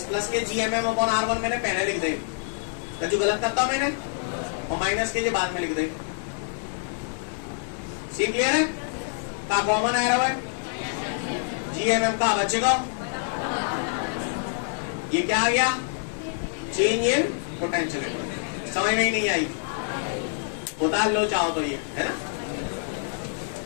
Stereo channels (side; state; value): right; silent; digital silence